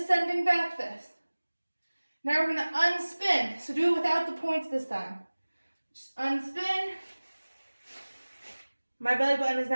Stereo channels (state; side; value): inverted; both; correlation -1.00